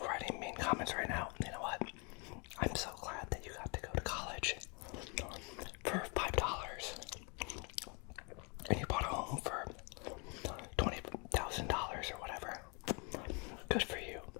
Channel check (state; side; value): quieter; right; 32.9 dB